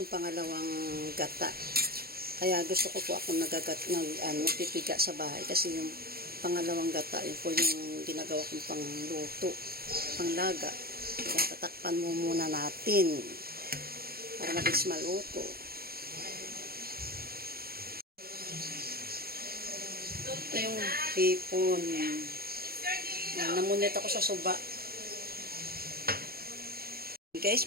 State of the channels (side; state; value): left; late; 0.44 ms